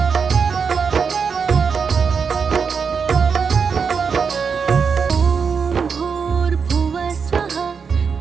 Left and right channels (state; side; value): quieter; left; 5.9 dB